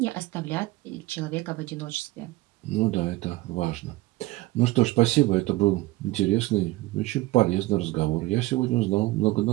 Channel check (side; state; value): left; quieter; 18.9 dB